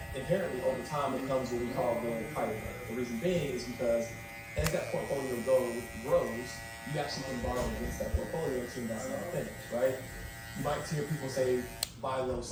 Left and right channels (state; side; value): identical; both; correlation 1.00